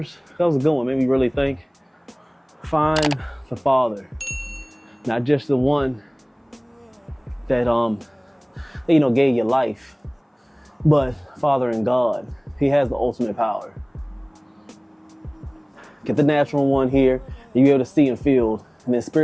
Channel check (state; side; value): identical; both; correlation 1.00